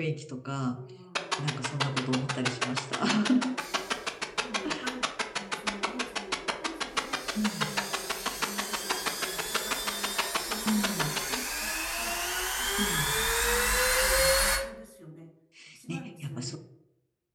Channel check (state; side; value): identical; both; correlation 1.00